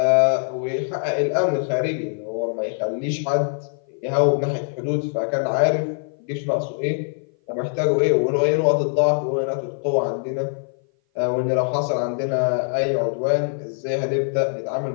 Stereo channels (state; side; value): silent; right; 57 dB below the other